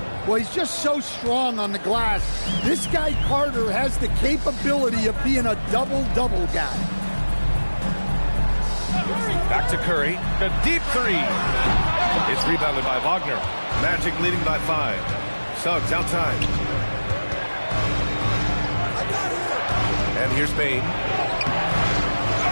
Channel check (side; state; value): both; inverted; correlation -1.00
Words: Well, he's just so strong on the glass. This guy, Carter, has the capability of being a double-double guy. Back to Curry. The deep three. It's rebounded by Wagner. Magic leading by 5. Suggs outside. And here's Bane.